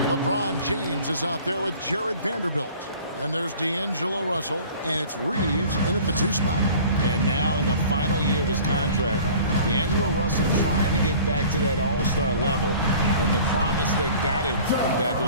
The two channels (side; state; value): both; inverted; correlation -0.46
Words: LeBron James is out there with Jared Vanderbilt. And there's D'Angelo Russell, and it's Reeves in at the 2 spot. And now in the final year of his contract, D'Angelo Russell trying to get back to that all-star level and the promise that got him that